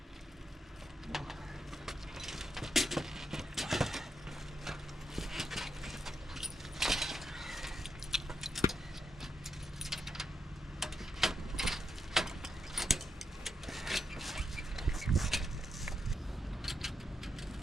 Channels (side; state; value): both; normal; correlation 0.83